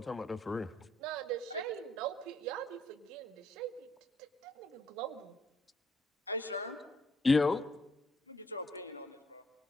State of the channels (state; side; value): normal; both; correlation 0.67